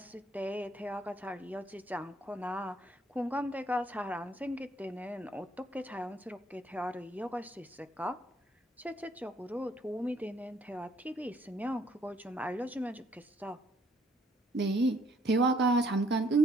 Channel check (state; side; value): normal; both; correlation 0.65